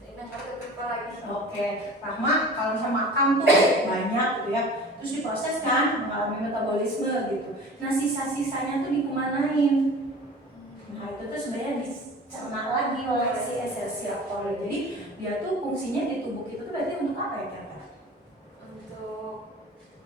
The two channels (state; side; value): normal; both; correlation 0.41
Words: Oke, Rahma kalau misalnya makan tuh banyak gitu ya, terus diproses kan, mengalami metabolisme gitu. Nah sisa-sisanya tuh dikemanain? Nah itu tuh sebenarnya dicerna lagi oleh si Escherichia coli. Jadi dia tuh fungsinya di tubuh kita tuh berarti untuk apa ya kira-kira? Untuk